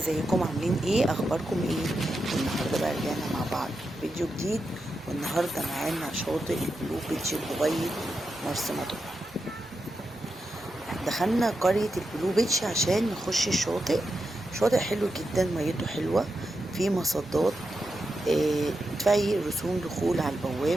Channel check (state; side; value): normal; both; correlation 0.87